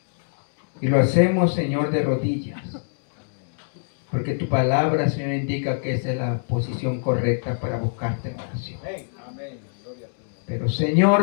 Y lo hacemos, Señor, de rodillas. Porque tu palabra, Señor, indica que esa es la posición correcta para buscarte en oración. Pero,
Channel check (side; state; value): right; silent; digital silence